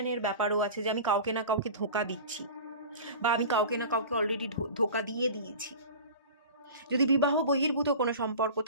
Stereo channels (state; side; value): inverted; both; correlation -0.36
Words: ব্যাপারও আছে যে আমি কাউকে না কাউকে ধোঁকা দিচ্ছি, বা আমি কাউকে না কাউকে অলরেডি ধোঁকা দিয়ে দিয়েছি। যদি বিবাহ বহির্ভূত কোনো সম্পর্ক